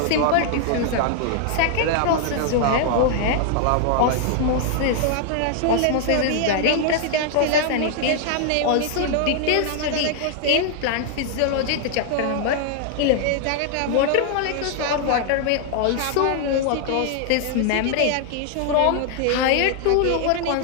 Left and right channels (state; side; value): different; both; correlation 0.00